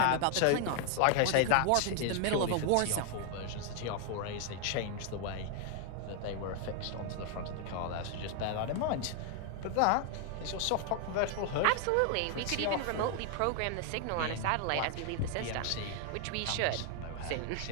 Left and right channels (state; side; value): different; both; correlation 0.00